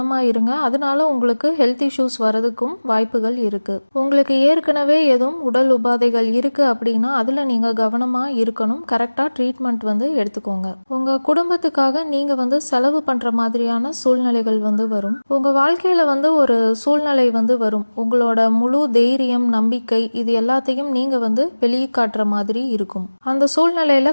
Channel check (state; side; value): inverted; both; correlation -1.00